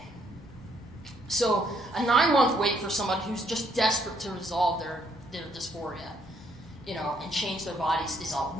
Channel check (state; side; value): noise; left; rumble, 24 dB below the sound